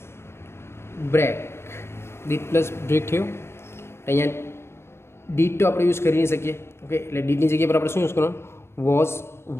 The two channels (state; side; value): late; right; 0.12 ms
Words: બ્રેક થયું. અહીંયા ડીડ તો આપણે યુઝ કરી નહીં શકીએ. ઓકે, એટલે ડીડની જગ્યા પર આપણે શું યુઝ કરવાનું વોઝ